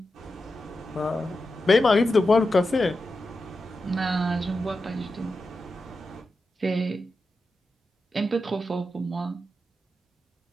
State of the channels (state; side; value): normal; both; correlation 0.90